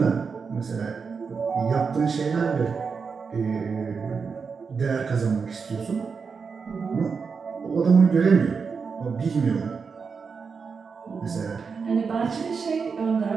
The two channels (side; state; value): left; quieter; 5.4 dB